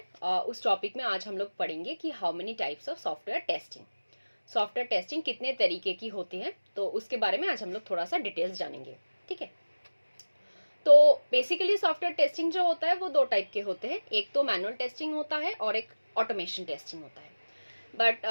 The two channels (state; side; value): inverted; both; correlation -1.00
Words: उस टॉपिक में आज हम लोग पढ़ेंगे कि how many types of software testing कितने तरीके की होती है, तो उसके बारे में आज हम लोग थोड़ा सा डिटेल्स जानेंगे। ठीक है, तो बेसिकली सॉफ्टवेयर टेस्टिंग जो होता है वो दो टाइप के होते हैं, एक तो मैनुअल टेस्टिंग होता है और एक ऑटोमेशन टेस्टिंग होता है। बट